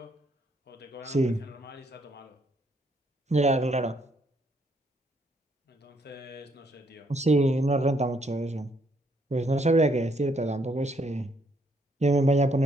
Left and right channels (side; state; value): both; normal; correlation 0.71